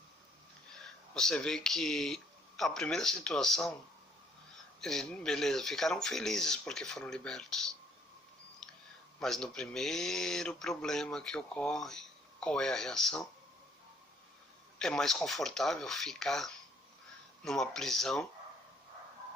Você vê que a primeira situação, beleza, ficaram felizes porque foram libertos. Mas no primeiro problema que ocorre, qual é a reação? É mais confortável ficar numa prisão,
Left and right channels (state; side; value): normal; both; correlation 0.63